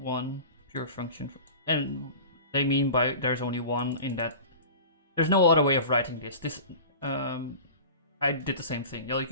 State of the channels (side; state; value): both; inverted; correlation -0.36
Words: one pure function, and they mean by there's only one in that. There's no other way of writing this. I did the same thing. Yeah, you